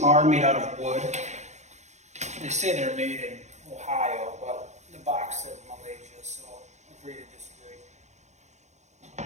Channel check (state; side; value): late; left; 0.33 ms